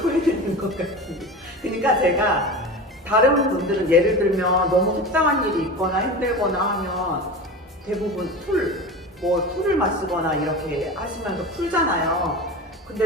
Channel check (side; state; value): both; normal; correlation 0.29